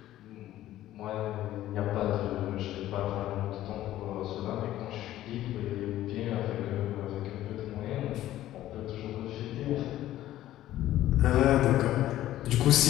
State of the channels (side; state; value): right; quieter; 13.8 dB